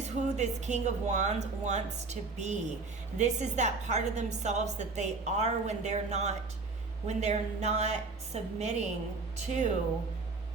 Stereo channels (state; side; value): quieter; left; 4.0 dB